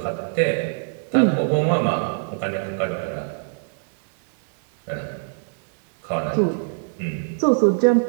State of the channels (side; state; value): left; silent; 58 dB below the other